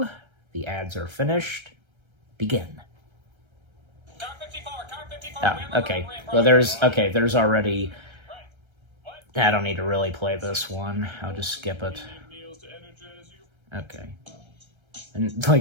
The ads are finished. Begin. Car 54, car 54. Oh, okay. Well, there's already... I don't need to really play this one. I'll just skip it. Okay. And,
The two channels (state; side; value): late; left; 1.3 ms